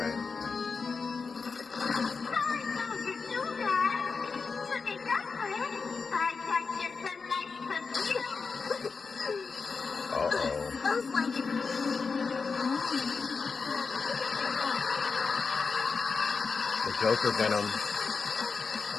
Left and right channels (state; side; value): quieter; right; 4.8 dB